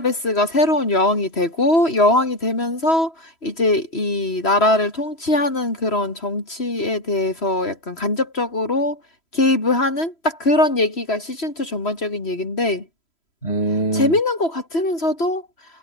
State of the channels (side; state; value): right; late; 3.0 ms